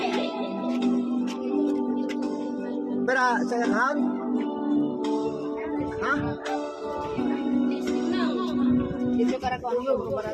Pero sa account? Ha? Dito kara ko ang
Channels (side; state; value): both; identical; correlation 1.00